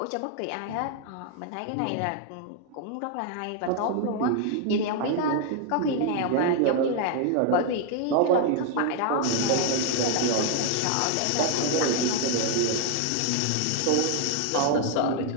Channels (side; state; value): both; different; correlation 0.00